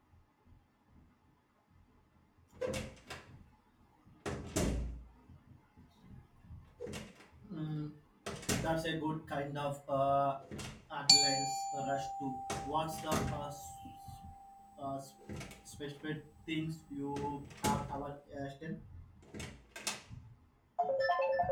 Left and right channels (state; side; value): identical; both; correlation 1.00